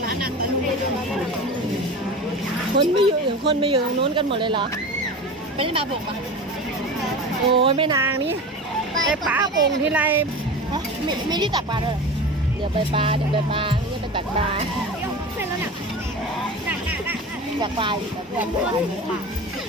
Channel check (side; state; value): both; normal; correlation 0.31